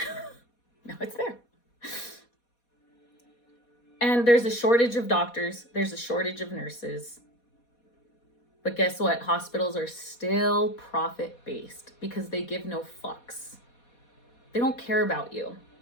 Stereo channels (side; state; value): right; late; 4.2 ms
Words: Now it's there. And there's a shortage of doctors. There's a shortage of nurses. But guess what? Hospitals are still profit-based because they give no fucks. They don't care about you.